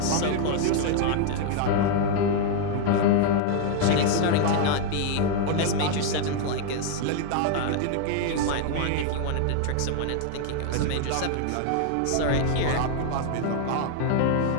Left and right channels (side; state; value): both; different; correlation 0.00